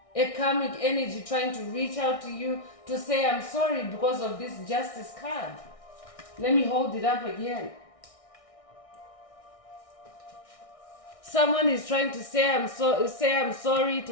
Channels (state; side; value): late; right; 1.6 ms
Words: A karmic energy trying to reach out to you to say, I'm sorry because of this justice card. Let me hold it up again. Someone is trying to say I'm sorry